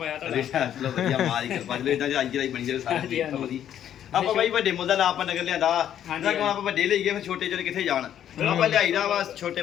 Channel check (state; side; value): quieter; right; 10.3 dB